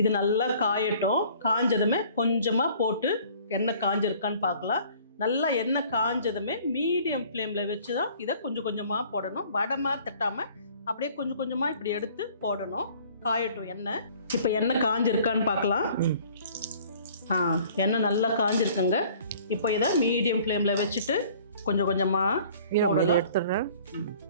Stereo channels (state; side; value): inverted; both; correlation -0.53